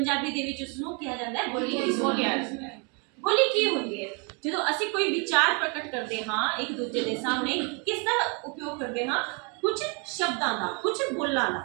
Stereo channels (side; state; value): left; quieter; 34.1 dB